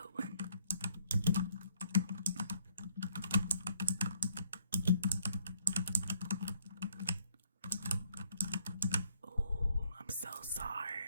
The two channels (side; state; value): both; inverted; correlation -0.66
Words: one. Oh, I'm so